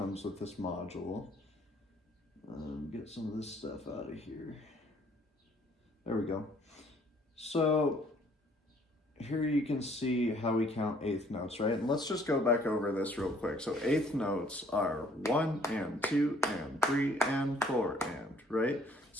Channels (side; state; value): both; normal; correlation 0.61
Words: with this module. Get some of this stuff out of here. There we go. So here you can see how we count eighth notes, right? And let's just go back over this real quick. So eighth notes are 1 and 2 and 3 and 4 and, right?